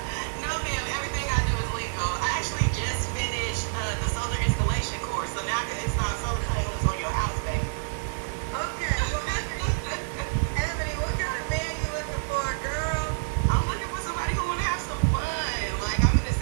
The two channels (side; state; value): left; silent; digital silence